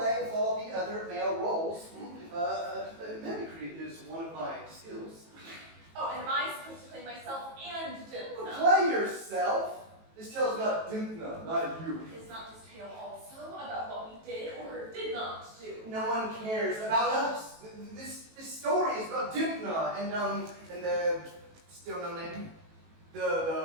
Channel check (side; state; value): left; late; 18 ms